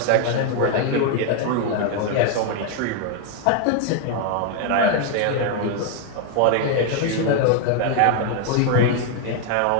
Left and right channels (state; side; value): different; both; correlation 0.00